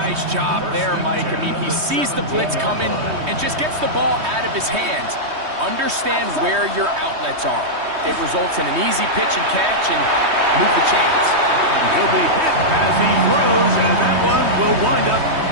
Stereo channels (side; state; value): left; late; 3.2 ms